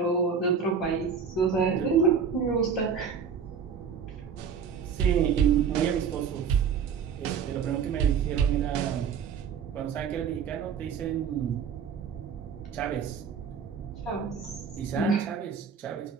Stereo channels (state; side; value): quieter; left; 6.6 dB